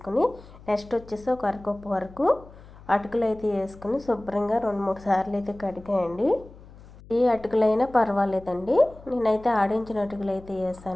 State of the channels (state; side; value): noise; left; hum, 20 dB below the sound